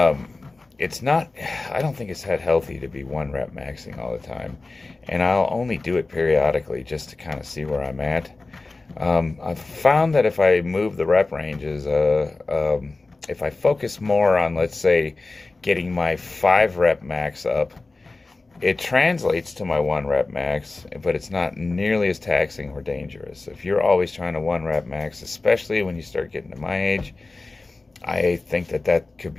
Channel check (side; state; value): right; quieter; 3.4 dB